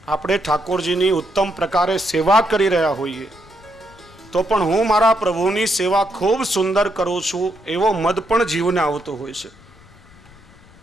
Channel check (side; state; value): left; noise; rumble, 25 dB below the sound